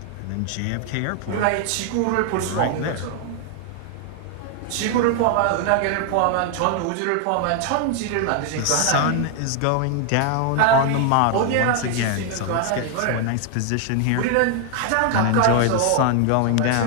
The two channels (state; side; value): different; both; correlation 0.00